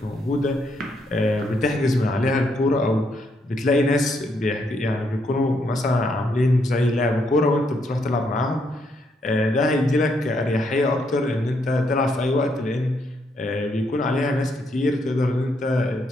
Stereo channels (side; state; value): both; normal; correlation 0.75